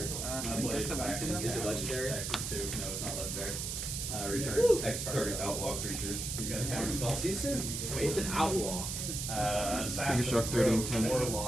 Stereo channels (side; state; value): right; noise; hiss, 4 dB below the sound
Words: that's a weird Is it legendary? Access to. No, it's not legendary. Returns X target outlaw creatures. You got a counter spell. See you soon. Wait, it's an outlaw. Figure Shock 30 and 10.